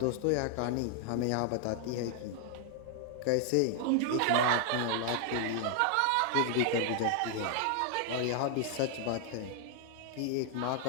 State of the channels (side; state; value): both; different; correlation 0.00